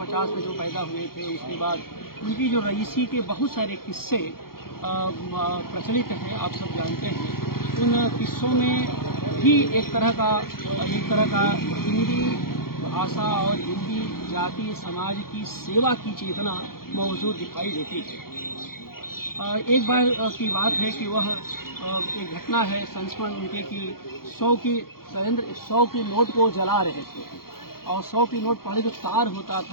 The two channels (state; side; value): late; right; 0.93 ms